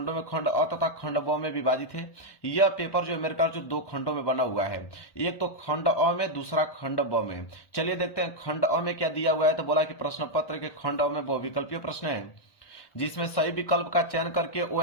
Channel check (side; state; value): right; late; 1.1 ms